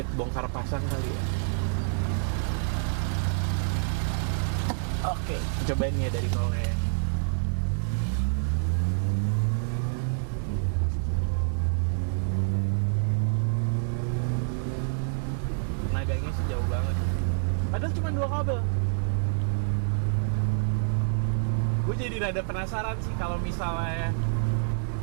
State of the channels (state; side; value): silent; left; digital silence